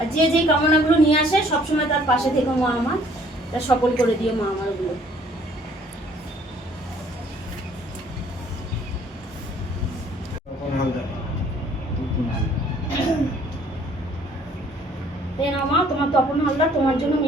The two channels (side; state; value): both; normal; correlation 0.59